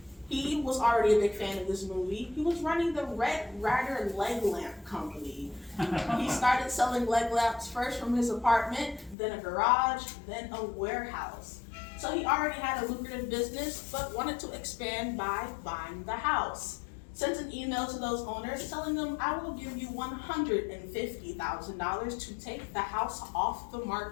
He was already a big fan of this movie. He was running the Red Ryder Leg Lamp Company. He started selling leg lamps first from his apartment, then a garage, then a warehouse. So he already had a lucrative business, but wanted to expand by buying the house. Sent an email to those owners telling them, I will give you $150,000 to take the house off the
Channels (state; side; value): drops out; right; at 9.2 s